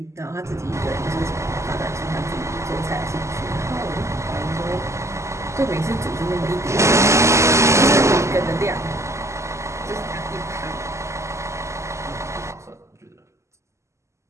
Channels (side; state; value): left; late; 0.14 ms